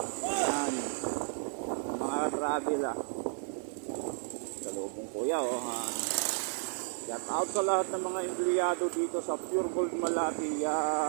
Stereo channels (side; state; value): left; silent; digital silence